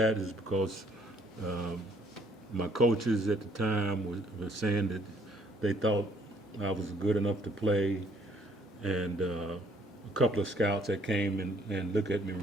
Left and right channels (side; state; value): both; normal; correlation 0.64